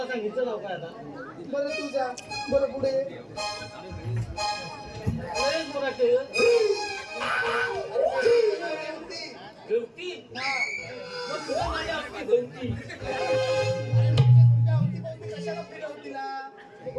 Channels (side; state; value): both; identical; correlation 1.00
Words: सांगितलं नाव काय आता बरं तू जा बरं पुढे लयच बोलायचं गवती मग तुला माझ्या आपली गवती तुझ्या अवतीभवती कशाला फिरव तिला